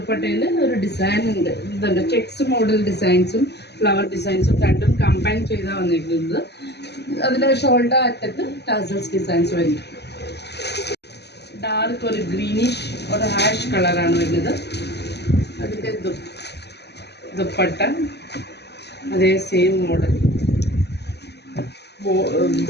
ഒരു ഡിസൈൻ ഉണ്ട്. ഇതുണ്ട് ചെക്സ് മോഡൽ ഡിസൈൻസും ഫ്ലവർ ഡിസൈൻസും രണ്ടും കമ്പൈൻ ചെയ്താണ് വന്നിരിക്കുന്നത്. അതിൻ്റെ ഷോൾഡർ അറ്റത്ത് ടാസൽസ് ഡിസൈൻസ് വരുന്നു. ഡാർക്ക് ഒരു ഗ്രീനിഷ് ഒരു ഹാഷ് കളറാണ് വരുന്നത്. അതിൻ്റെ ദുപ്പട്ട അതേ same model.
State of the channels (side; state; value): right; late; 0.49 ms